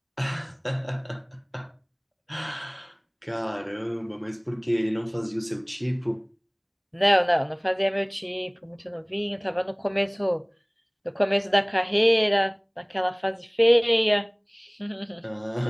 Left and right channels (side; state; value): both; identical; correlation 1.00